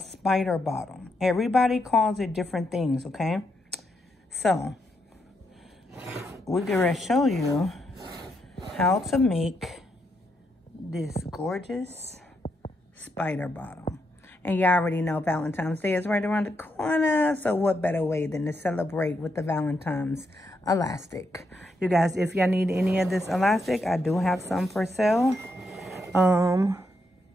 bottom. Everybody calls it different things, okay? So, we're gonna show you how to make this gorgeous spider bottom. And you already know Valentine's Day is right around the corner. So what better way than to celebrate with the Valentine's elastic. You guys, if y'all need any of this elastic, I do have some for sale. And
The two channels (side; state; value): both; normal; correlation 0.80